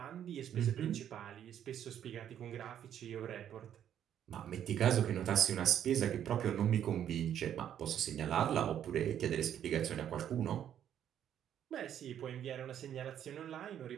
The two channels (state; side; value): quieter; left; 10.0 dB